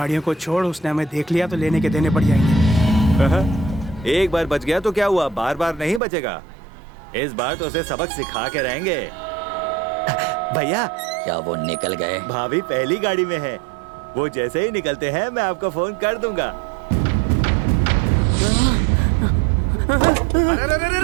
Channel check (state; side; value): drops out; left; at 6.0 s